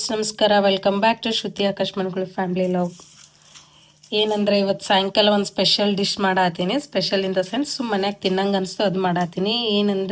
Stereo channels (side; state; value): both; identical; correlation 1.00